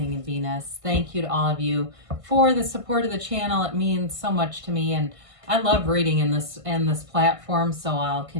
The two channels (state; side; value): late; left; 1.5 ms